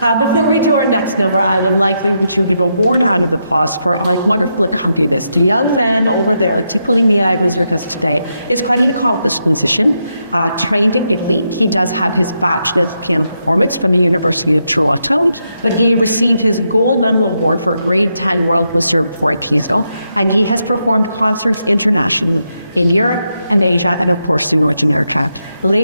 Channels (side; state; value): both; inverted; correlation -0.82